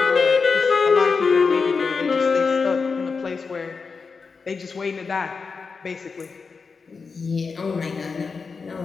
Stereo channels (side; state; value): right; quieter; 4.9 dB